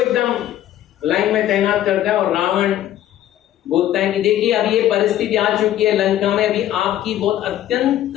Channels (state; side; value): quieter; right; 12.4 dB